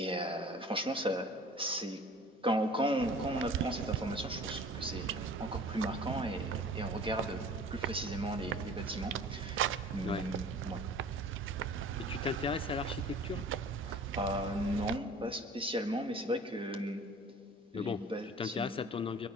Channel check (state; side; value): normal; both; correlation 0.45